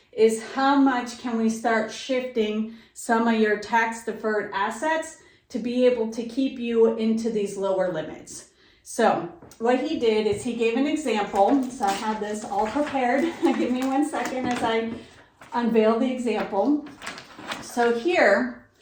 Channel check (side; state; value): both; identical; correlation 1.00